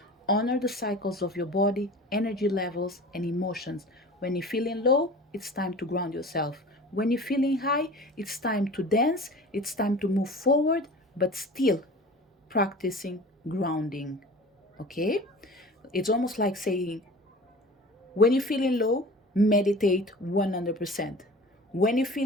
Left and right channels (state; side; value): normal; both; correlation 0.39